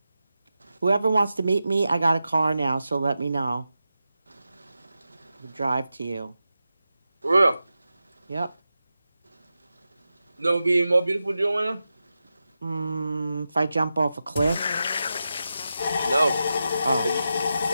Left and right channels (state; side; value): inverted; both; correlation -0.91